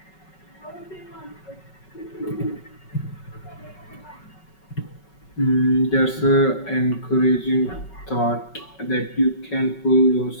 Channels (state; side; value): late; right; 5.3 ms